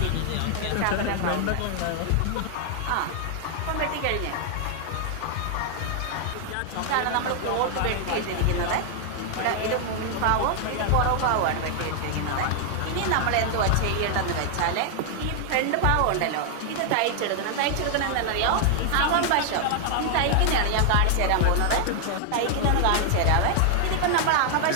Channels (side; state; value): both; different; correlation 0.00